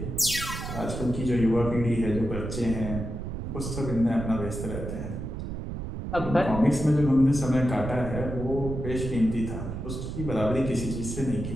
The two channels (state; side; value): noise; right; rumble, 6 dB below the sound